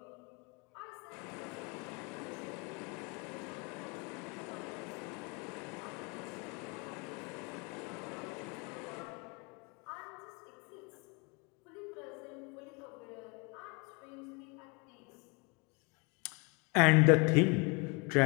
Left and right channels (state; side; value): quieter; right; 30.1 dB